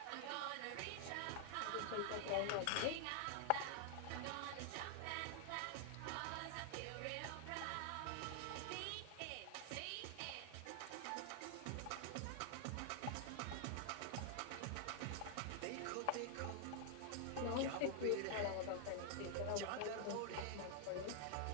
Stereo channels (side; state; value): both; different; correlation 0.00